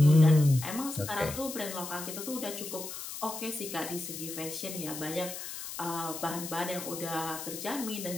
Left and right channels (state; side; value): noise; left; hiss, 8 dB below the sound